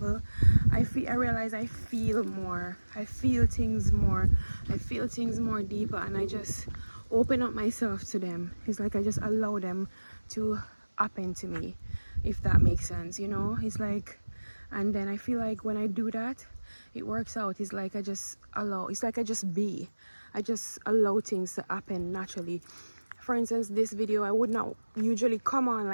I realize I feel more. I feel things more. I feel things more deeper, and I just open up myself to them. It's like I just allow them to happen to me, if that makes sense, It's like, and then I feel like when I do that, it works out. It's like I just allow. It's like I just be. I just allow things to happen naturally. For instance, this video, I would not usually come on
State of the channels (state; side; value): inverted; both; correlation -1.00